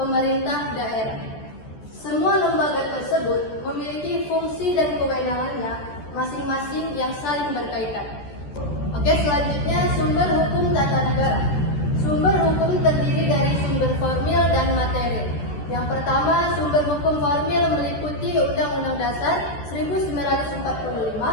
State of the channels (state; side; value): late; right; 14 ms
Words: daerah. Semua lembaga tersebut memiliki fungsi dan kewenangannya masing-masing yang saling berkaitan. Oke, selanjutnya sumber hukum tata negara. Sumber hukum terdiri dari sumber formil dan materi. Yang pertama, sumber hukum formil meliputi Undang-Undang Dasar 1945,